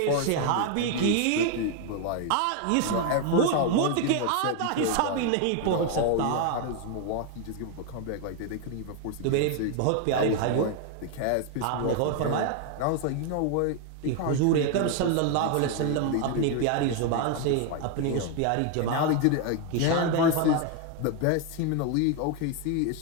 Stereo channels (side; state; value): both; different; correlation 0.01